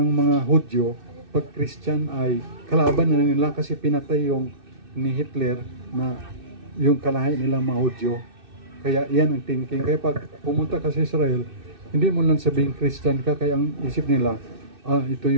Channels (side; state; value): left; late; 2.6 ms